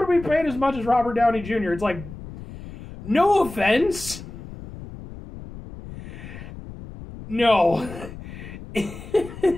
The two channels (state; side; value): noise; left; rumble, 13 dB below the sound